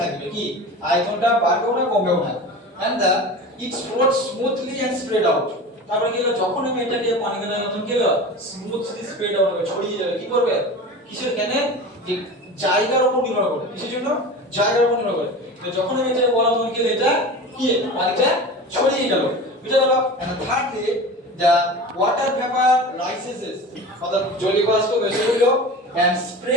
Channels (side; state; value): both; normal; correlation 0.33